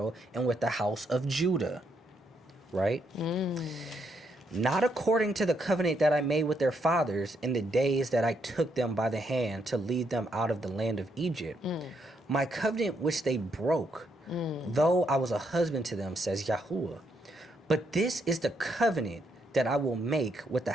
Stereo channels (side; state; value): both; normal; correlation 0.76